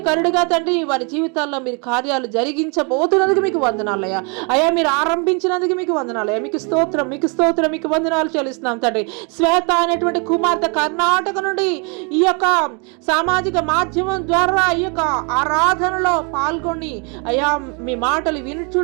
తండ్రి వారి జీవితాల్లో మీరు కార్యాలు జరిగించబోతున్నందుకు మీకు వందనాలయ్యా. అయ్యా మీరు ఆరంభించినందుకు మీకు వందనాలయ్యా. మీకు స్తోత్రం, మీకు స్తోత్రం, మీకు వందనాలు చెల్లిస్తున్నాం తండ్రి. శ్వేత అనేటువంటి కుమార్తె కర్ణాటక నుండి ఈ యొక్క సామాజిక మాధ్యమం ద్వారా ఈ యొక్క ఆరాధనలో పాల్గొని అయ్యా మీ మాటలు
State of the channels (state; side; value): quieter; left; 34.3 dB